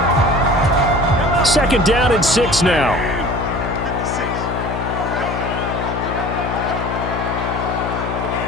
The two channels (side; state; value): left; noise; hum, 4 dB below the sound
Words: 2nd down and 6 now.